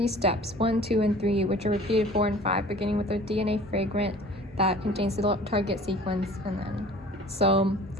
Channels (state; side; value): normal; both; correlation 0.46